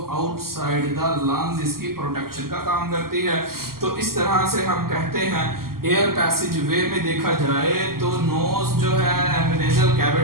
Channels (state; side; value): late; left; 0.92 ms